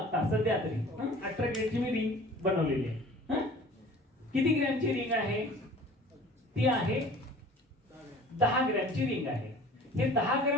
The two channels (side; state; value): both; normal; correlation 0.46